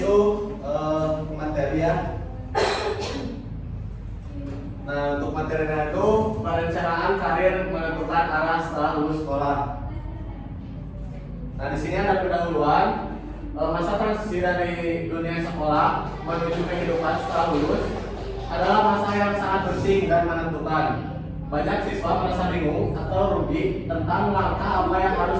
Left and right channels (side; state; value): both; identical; correlation 1.00